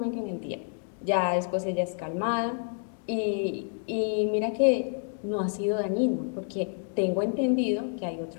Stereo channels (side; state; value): right; silent; 59 dB below the other